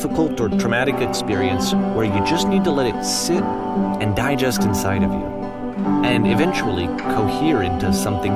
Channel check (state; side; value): identical; both; correlation 1.00